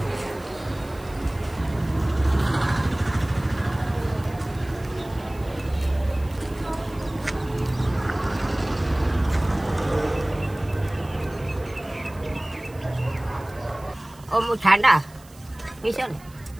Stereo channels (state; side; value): noise; right; hiss, 25 dB below the sound